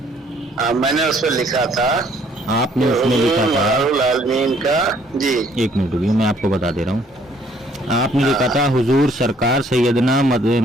میں نے اس پہ لکھا تھا آپ کہ نے اس میں حضور لکھا تھا، مدار العالمین کا، جی ایک منٹ رکیے میں آپ کو بتا دے رہا ہوں۔ آپ نے لکھا تھا حضور سرکار سیدنا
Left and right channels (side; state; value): both; normal; correlation 0.63